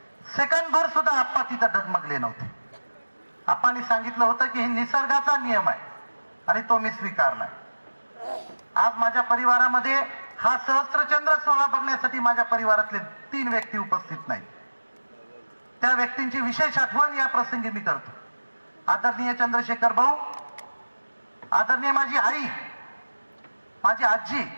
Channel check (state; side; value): inverted; both; correlation -1.00